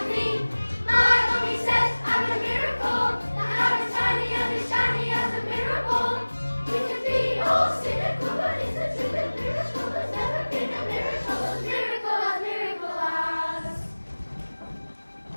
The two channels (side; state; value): both; inverted; correlation -1.00